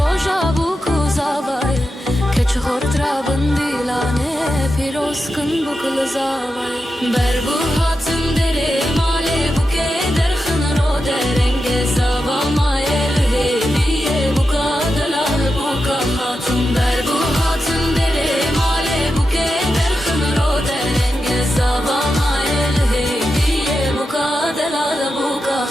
بوکو زاوایه که چخورت را بندیلانه پیروز کن بکل زاوایه بربو هاتم دره ماله بوکه درخن رو درنگ زاوا مایل هیویه بوکا دلال بوکا خاتون بربو هاتم دره ماله بوکه درخن رو درنگ زاوا مایل هیویه بوکا دلال بوکا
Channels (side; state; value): both; normal; correlation 0.89